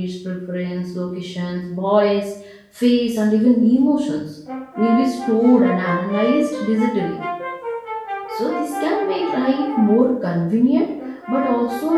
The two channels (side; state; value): both; identical; correlation 1.00